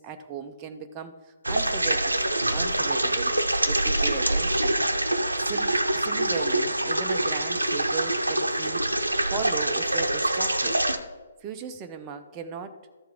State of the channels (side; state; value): both; inverted; correlation -0.89